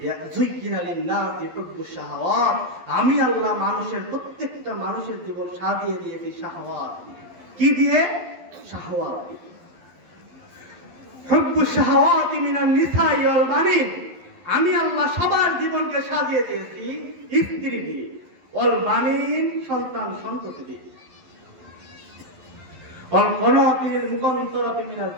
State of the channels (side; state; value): left; late; 11 ms